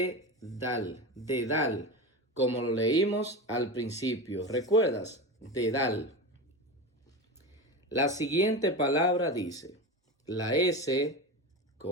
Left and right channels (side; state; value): both; normal; correlation 0.24